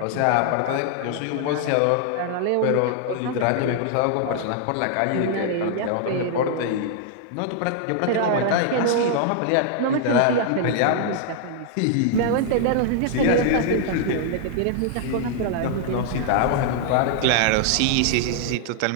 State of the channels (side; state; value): both; different; correlation 0.00